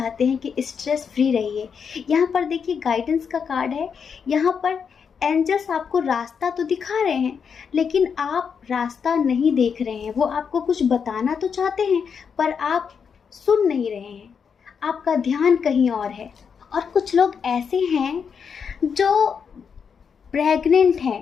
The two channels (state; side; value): quieter; right; 6.5 dB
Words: हैं कि स्ट्रेस फ्री रहिए। यहाँ पर देखिए गाइडेंस का कार्ड है। यहाँ पर एंजल्स आपको रास्ता तो दिखा रहे हैं लेकिन आप रास्ता नहीं देख रहे हैं। वो आपको कुछ बताना तो चाहते हैं पर आप सुन नहीं रहे हैं, आपका ध्यान कहीं और है। और कुछ लोग ऐसे हैं जो प्रेग्नेंट